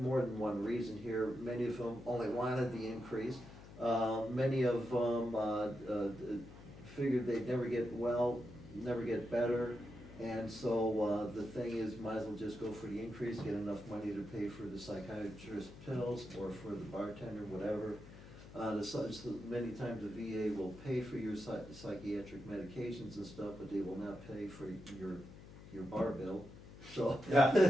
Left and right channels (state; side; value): noise; left; hum, 16 dB below the sound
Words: than one reason here. Many of them only wanted the increase. Many of them figured they'd never get well, never get better. And so the thing is, might as well just go for the increase, get enough money to pay for the psychiatrist pills or for the bartender, whatever. Many times the VA will pay for your psychiatric medications and stuff, but they will not pay for your bar bill. So. Yeah.